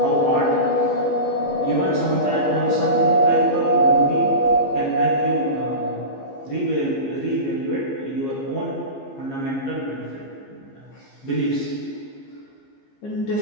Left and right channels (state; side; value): late; right; 15 ms